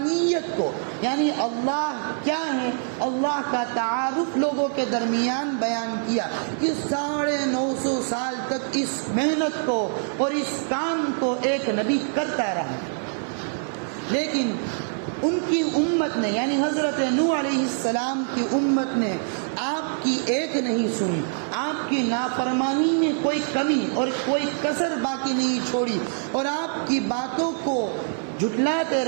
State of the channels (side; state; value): left; silent; 57 dB below the other